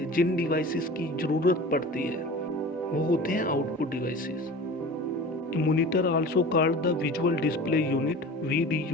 जिन डिवाइसेस की ज़रूरत पड़ती है वो होते हैं output devices. A monitor also called the visual display unit,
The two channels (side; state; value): both; normal; correlation 0.37